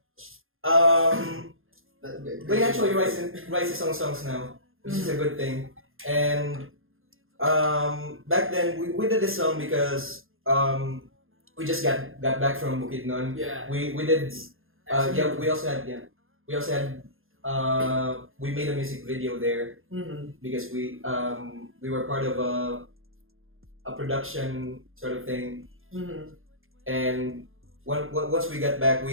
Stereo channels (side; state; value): left; late; 0.60 ms